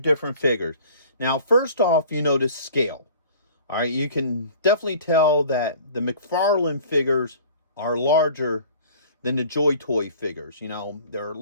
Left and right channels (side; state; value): both; inverted; correlation -0.47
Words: figures. Now, first off, you notice scale. All right, you can definitely tell that the McFarland figures are larger than the Joytoy figures. You know, they're